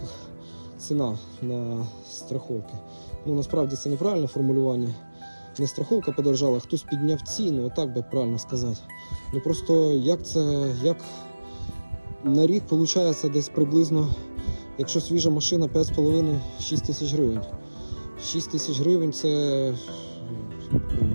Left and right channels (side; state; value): both; inverted; correlation -1.00